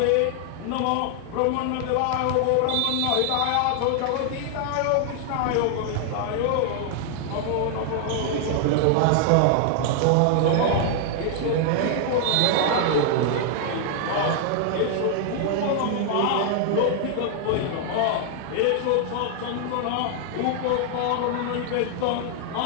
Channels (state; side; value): different; both; correlation 0.00